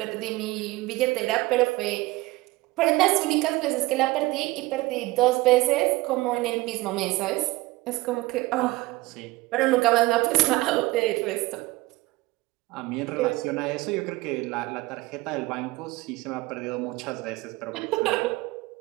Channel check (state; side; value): quieter; left; 20.4 dB